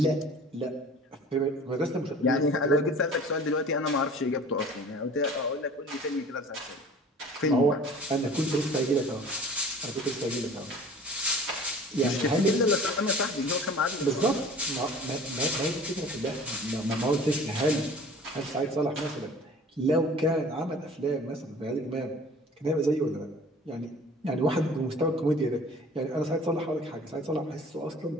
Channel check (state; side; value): normal; both; correlation 0.45